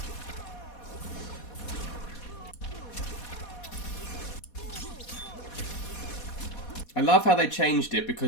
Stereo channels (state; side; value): late; right; 4.2 ms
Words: I love how they changed it